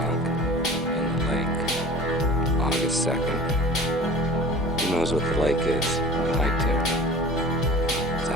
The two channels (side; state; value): both; normal; correlation 0.42